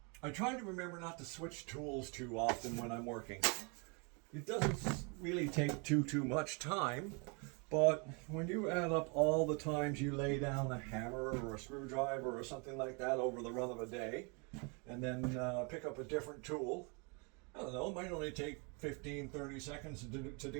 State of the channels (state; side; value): quieter; left; 33.0 dB